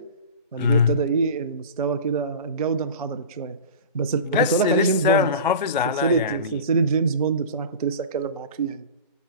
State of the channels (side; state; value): both; inverted; correlation -0.34